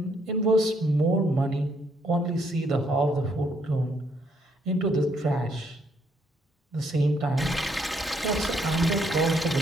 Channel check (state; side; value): normal; both; correlation 0.71